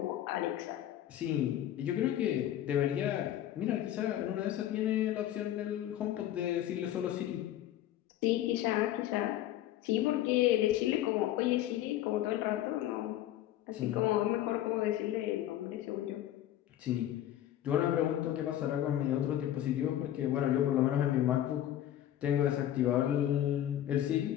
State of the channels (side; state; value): right; quieter; 12.4 dB